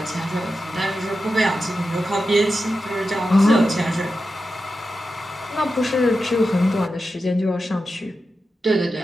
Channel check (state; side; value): normal; both; correlation 0.90